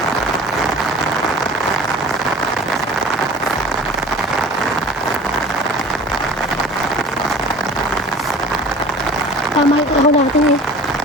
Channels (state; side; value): normal; both; correlation 0.42